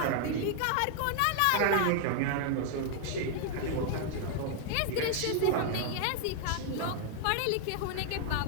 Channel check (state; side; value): different; both; correlation 0.00